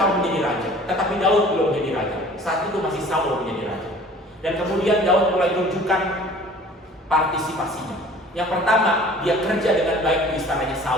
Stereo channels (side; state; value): both; normal; correlation 0.48